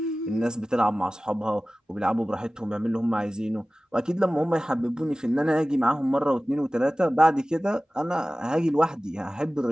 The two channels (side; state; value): both; normal; correlation 0.97